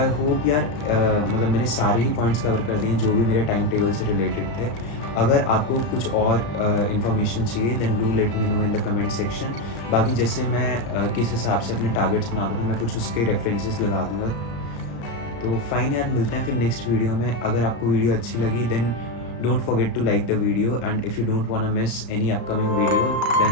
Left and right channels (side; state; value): right; late; 35 ms